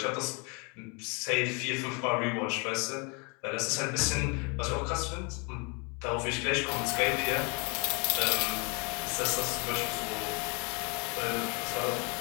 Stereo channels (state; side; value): quieter; right; 32.2 dB